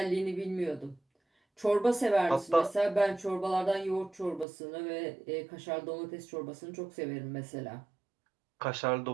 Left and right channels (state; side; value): drops out; left; at 4.5 s